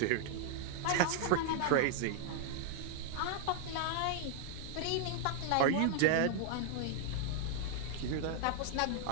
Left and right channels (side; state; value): both; different; correlation 0.00